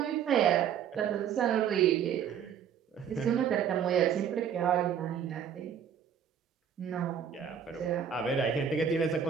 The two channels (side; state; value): left; quieter; 8.2 dB